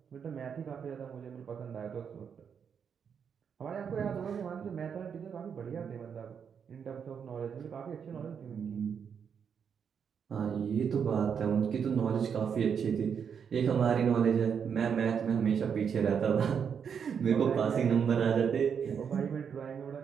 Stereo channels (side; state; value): left; quieter; 7.1 dB